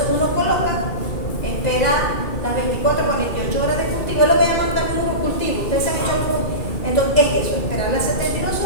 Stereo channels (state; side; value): late; right; 2.4 ms